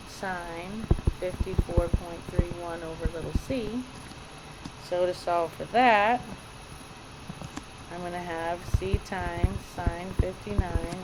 sine 54.31 over little c. So to solve for that, I'm going to have c times sine 59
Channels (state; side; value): identical; both; correlation 1.00